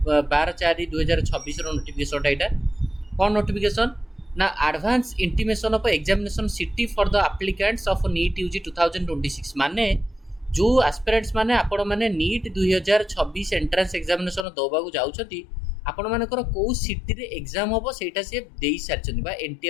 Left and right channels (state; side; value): drops out; right; at 14.5 s